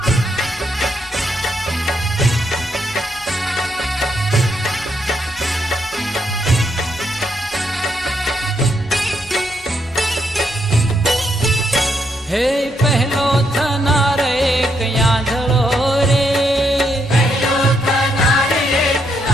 હે પહેલો થનાર એક યાંધળો રે, પહેલો થનાર એક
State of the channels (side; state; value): both; normal; correlation 0.77